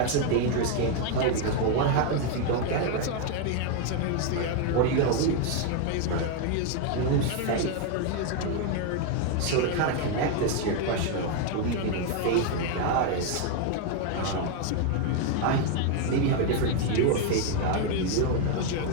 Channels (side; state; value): both; different; correlation 0.01